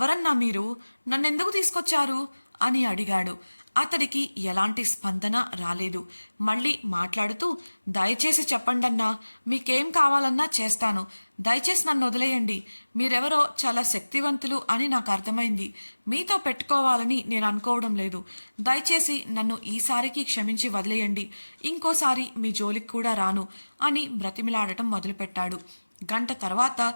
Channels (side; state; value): both; inverted; correlation -1.00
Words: మీరు, నన్నెందుకు తీసుకొచ్చారు అని అడిగాడు. అతడికి ఎలాంటి స్పందన రాలేదు. మళ్ళీ మాట్లాడుతూ, దయచేసి చెప్పండన్నా, మీకేం కావాలన్నా చేస్తాను. దయచేసి నన్ను వదిలేయండి. మీరెవరో చాలా శక్తివంతులు అని నాకు అర్థమైంది. మీతో పెట్టుకోవాలని నేను అనుకోవడం లేదు. దయచేసి నన్ను ఈసారికి క్షమించి వదిలేయండి. ఇంకోసారి మీ జోలికి కూడా రాను అని బ్రతిమిలాడటం మొదలుపెట్టాడు. గంట తర్వాత